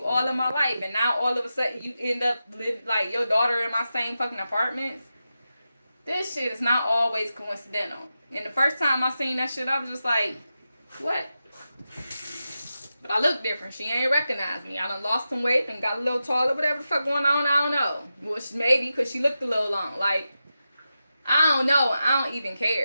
all in my life, and now all of a sudden you end up like your daughter in my same fucking apartments? This shit is not always coincidental. And the first time I seen that shit, I was just like, what? But I look different. She ain't recognize me. I done lost some weight and got a little taller. Whatever the fuck going on, I don't know. Which maybe because she looked a little long. Like, I don't know. I don't even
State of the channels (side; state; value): both; inverted; correlation -0.90